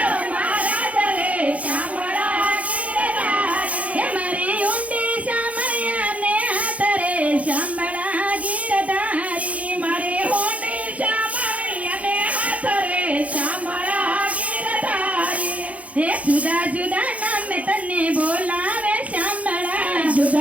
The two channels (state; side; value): late; left; 0.067 ms